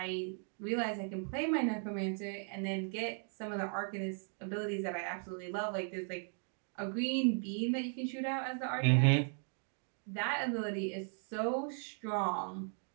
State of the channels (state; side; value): silent; left; 53 dB below the other